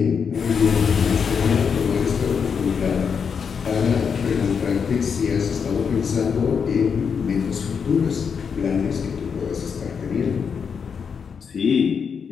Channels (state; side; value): quieter; right; 6.4 dB